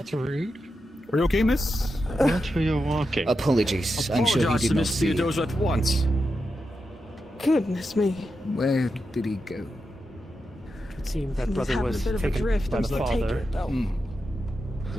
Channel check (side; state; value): both; normal; correlation 0.88